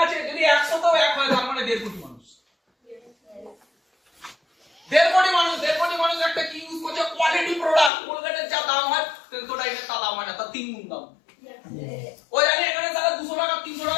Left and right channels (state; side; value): drops out; right; at 7.9 s